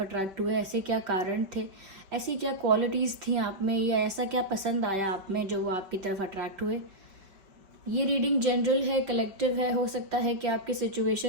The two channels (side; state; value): left; late; 5.3 ms